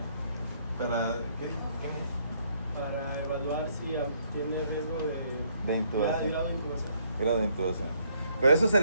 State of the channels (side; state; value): both; inverted; correlation -0.69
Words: ¿Para qué? Para evaluar si tiene riesgo De intubación. grado de intubación. Grado de intubación. Pero eso